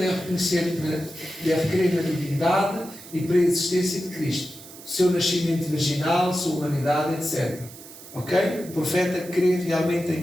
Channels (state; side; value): noise; right; hiss, 17 dB below the sound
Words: crer na divindade e pré-existência de Cristo, seu nascimento virginal, sua humanidade, etc. Ok? O profeta crê realmente em